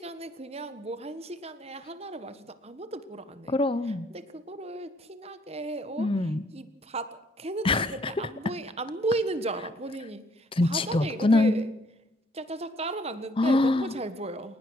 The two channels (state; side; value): normal; both; correlation 0.63